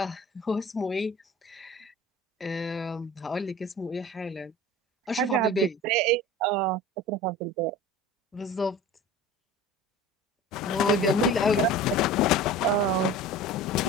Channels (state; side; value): normal; both; correlation 0.38